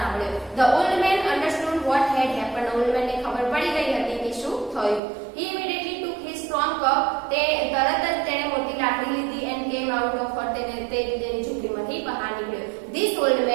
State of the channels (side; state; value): left; drops out; at 5.0 s